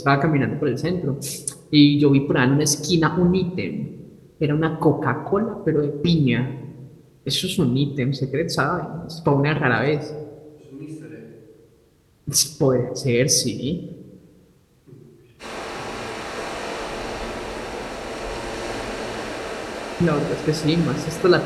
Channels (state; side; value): identical; both; correlation 1.00